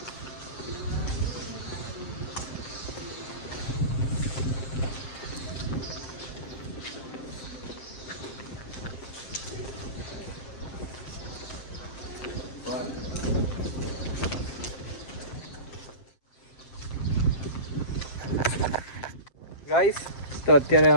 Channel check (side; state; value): right; late; 7.6 ms